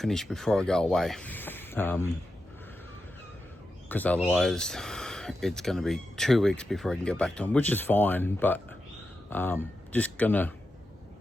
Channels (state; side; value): normal; both; correlation 0.89